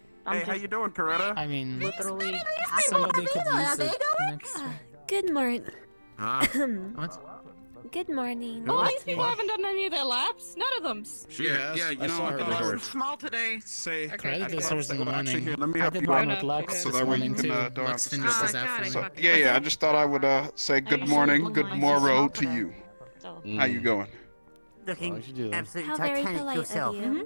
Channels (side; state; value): both; inverted; correlation -1.00